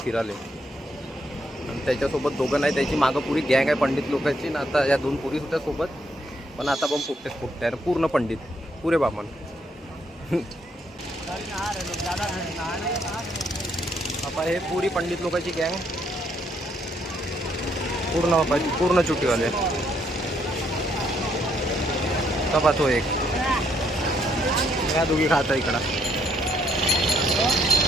फिराले. आणि त्याच्यासोबत दोघं नाही, त्याची मागं पुरी गँग आहे पंडित लोकांची ना. आता या 2 पोरी होत्या सोबत, पण आता पण फुटते आहे पूर्ण पंडित, पुरे बामण. आता हे पुरी पंडित लोकांची गँग पूर्ण चुटीवाले. कपा तो एक या दोघी खाता इकडं.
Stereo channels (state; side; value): normal; both; correlation 0.72